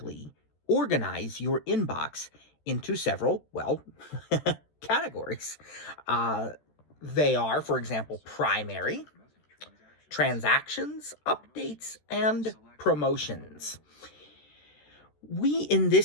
organize your inbox into several, categories. Uh, they are, for example, primary, transactions, updates, and promotions. We, in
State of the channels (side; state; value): right; late; 13 ms